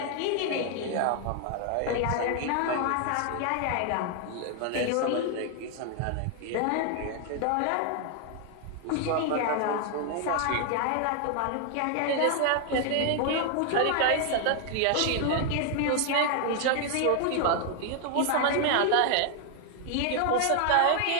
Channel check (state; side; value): different; both; correlation 0.00